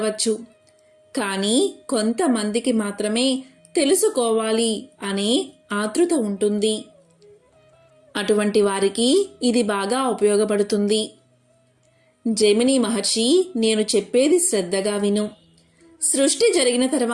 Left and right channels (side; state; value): both; identical; correlation 1.00